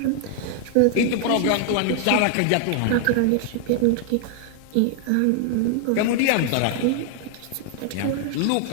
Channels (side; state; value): both; different; correlation 0.00